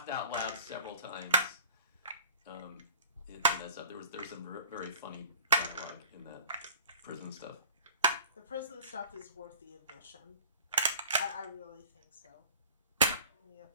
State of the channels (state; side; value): inverted; both; correlation -0.44